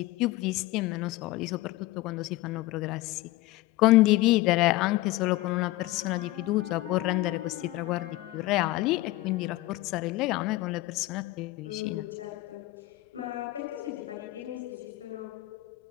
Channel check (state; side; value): quieter; right; 18.5 dB